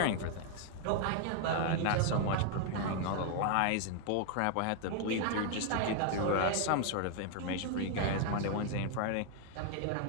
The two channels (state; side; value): different; both; correlation 0.00